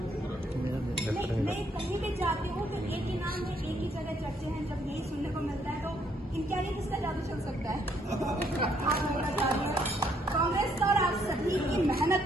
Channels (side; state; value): both; normal; correlation 0.69